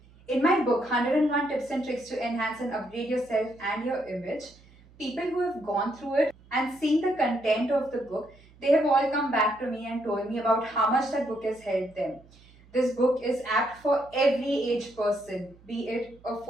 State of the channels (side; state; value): right; noise; hum, 26 dB below the sound